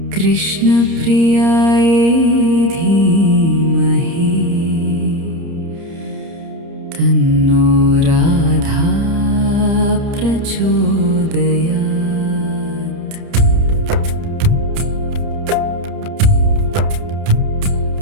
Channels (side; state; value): left; late; 30 ms